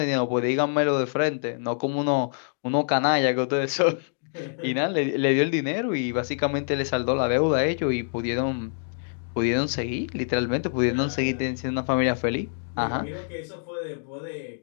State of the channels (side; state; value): right; silent; digital silence